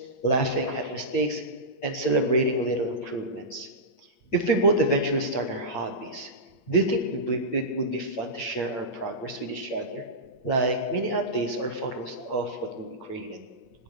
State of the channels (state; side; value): late; right; 8.6 ms